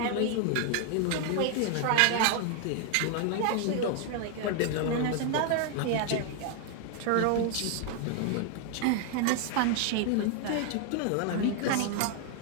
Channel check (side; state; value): both; different; correlation 0.00